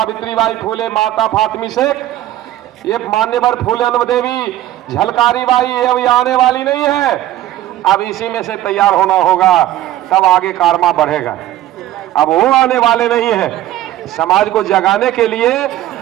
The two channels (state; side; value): quieter; left; 13.9 dB